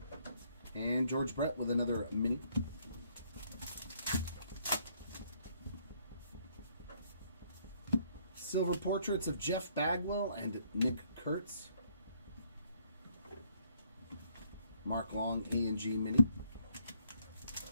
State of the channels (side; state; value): both; inverted; correlation -0.67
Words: And George Brett with another mini. Silver portraits of Jeff Bagwell and Nick Kurtz. Mark Long A&G Mini.